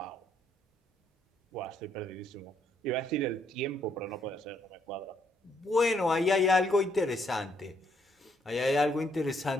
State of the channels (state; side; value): normal; both; correlation 0.71